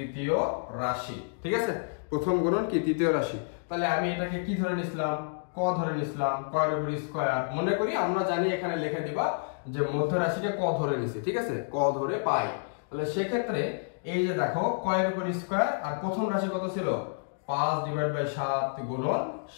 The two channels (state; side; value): silent; right; digital silence